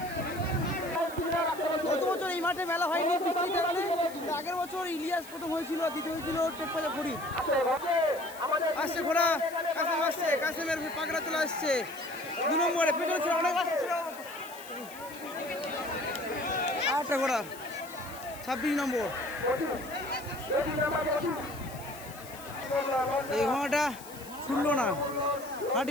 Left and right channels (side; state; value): left; noise; hiss, 17 dB below the sound